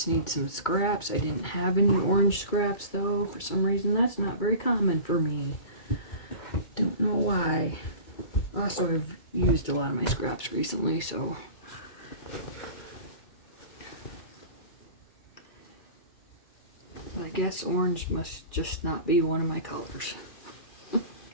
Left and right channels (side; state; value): right; late; 2.3 ms